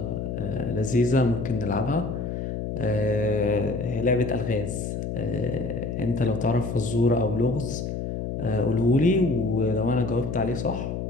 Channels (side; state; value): left; noise; hum, 4 dB below the sound